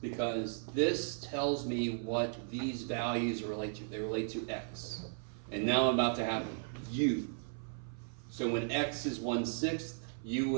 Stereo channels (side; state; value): left; silent; 54 dB below the other